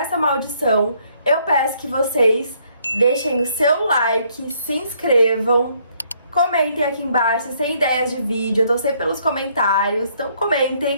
maldição, eu peço que vocês deixem o seu like, se inscrevam, comentem aqui embaixo se tem ideias de vídeo, eu tô sempre pelos comentários, então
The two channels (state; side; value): inverted; both; correlation -0.68